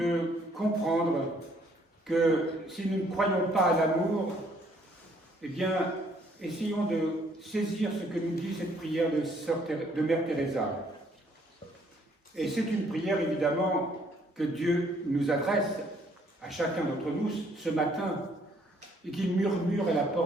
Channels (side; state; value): both; normal; correlation 0.65